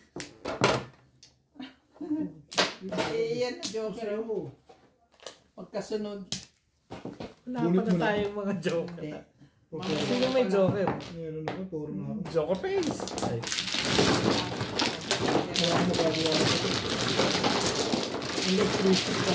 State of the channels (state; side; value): identical; both; correlation 1.00